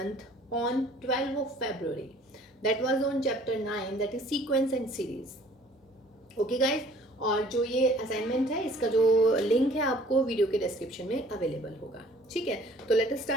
on 12th of February. That was on chapter 9, that is sequence and series. Okay guys, और जो ये assignment है इसका जो link है आपको video के description में अवेलेबल होगा. ठीक है, तो let us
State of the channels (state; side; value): normal; both; correlation 0.54